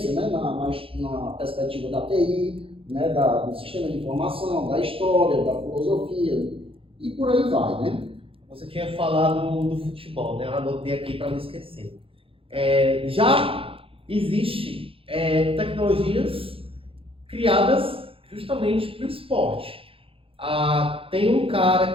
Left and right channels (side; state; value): left; late; 0.27 ms